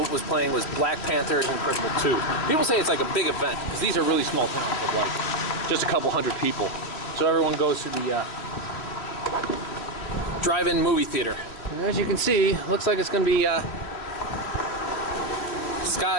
was playing was Black Panther and Incredible 2. People say it's like a big event because these are really small towns of like just a couple hundred people. So everyone goes to the drive-in movie theater. And as you can see, looks like it's going to be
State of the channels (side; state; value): right; late; 3.2 ms